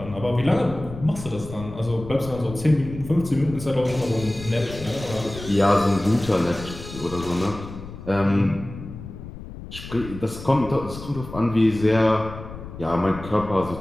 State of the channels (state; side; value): noise; left; rumble, 12 dB below the sound